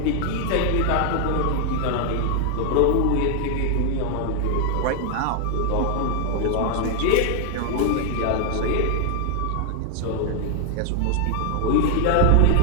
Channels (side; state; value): both; different; correlation 0.00